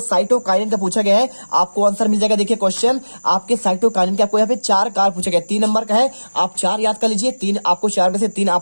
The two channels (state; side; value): inverted; both; correlation -1.00